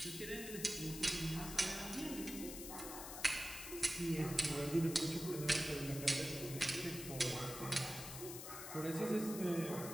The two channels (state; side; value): noise; left; hiss, 8 dB below the sound